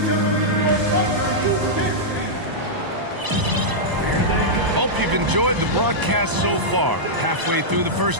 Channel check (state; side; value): late; left; 1.0 ms